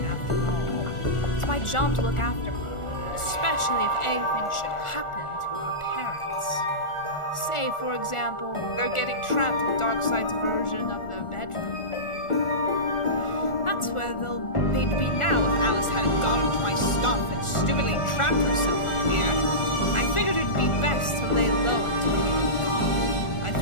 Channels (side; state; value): right; late; 1.4 ms